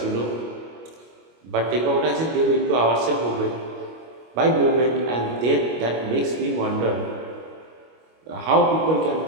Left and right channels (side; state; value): left; late; 25 ms